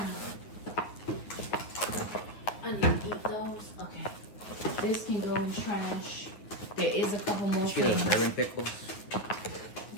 I need to eat those. Okay. This can go in trash. There is a couple more See those things. bourbon pickles? I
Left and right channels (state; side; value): late; right; 9.5 ms